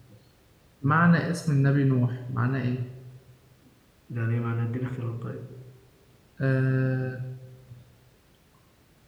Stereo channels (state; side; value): identical; both; correlation 1.00